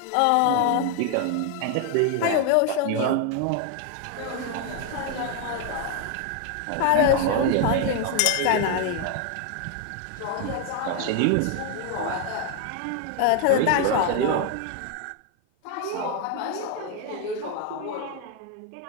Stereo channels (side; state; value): both; different; correlation 0.01